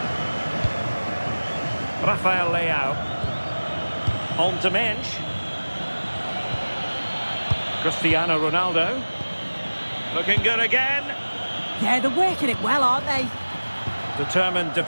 Rafael Leao. On to Mensch. Cristiano Ronaldo. Looking good again. Yeah, they're working it well, aren't they? Determined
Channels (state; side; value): inverted; both; correlation -1.00